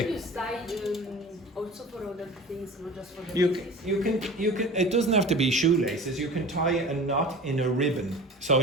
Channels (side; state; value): both; normal; correlation 0.38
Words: Also for other things, not just for the You can, it doesn't have to be shoelaces. You can tie a knot in a ribbon. So,